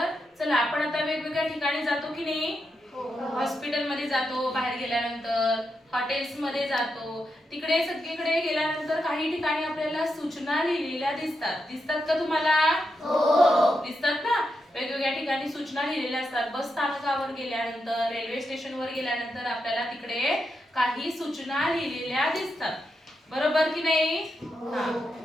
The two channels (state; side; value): normal; both; correlation 0.85